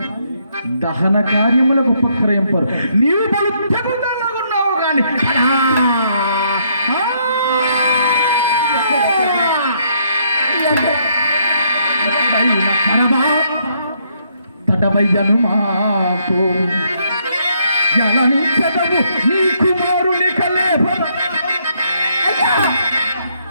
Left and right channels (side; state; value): both; inverted; correlation -0.72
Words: దహన కార్యములకు ఉపక్రయింపరు. నీవు బలుగున్నావు గాని తటవయ్యను మాకు జలనిచ్చదవు నీ కుమారుని కలేపర.